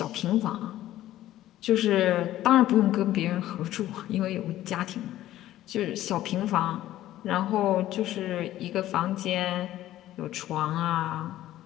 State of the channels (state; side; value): quieter; right; 14.0 dB